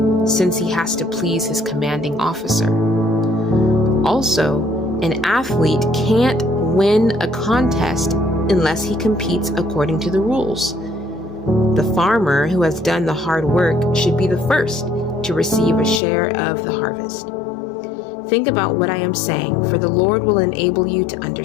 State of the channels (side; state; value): right; drops out; at 16.0 s